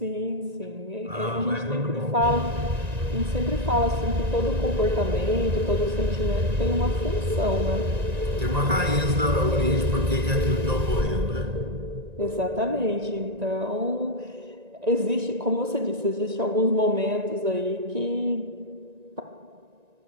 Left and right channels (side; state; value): left; late; 1.9 ms